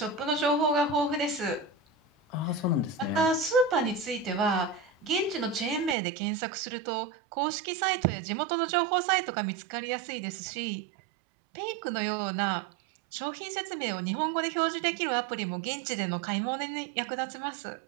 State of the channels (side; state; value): left; drops out; at 6.0 s